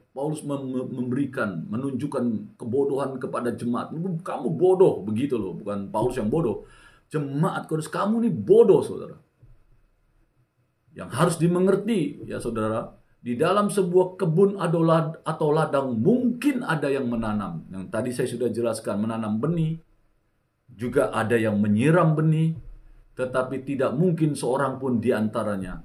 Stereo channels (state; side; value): identical; both; correlation 1.00